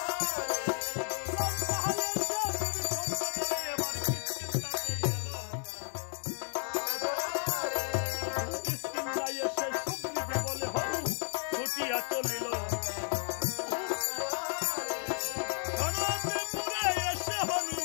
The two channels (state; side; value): silent; right; 56 dB below the other